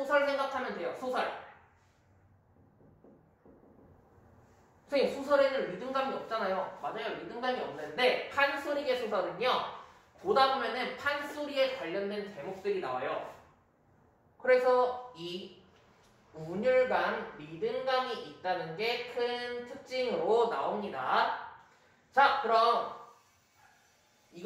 생각하면 돼요. 소설. 선생님, 소설에는 리듬감이 없잖아요. 맞아요. 리듬감이 없는데 판소리계 소설은요, 보다 보면은 판소리에 관련된 제목들이 나와요. 그래서 이 운율감, 리듬감이 있다는 게 큰 특징으로 나옵니다. 자, 그럼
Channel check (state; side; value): identical; both; correlation 1.00